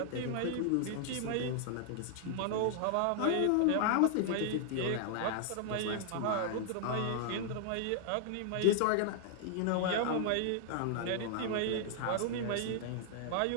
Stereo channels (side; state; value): both; different; correlation -0.01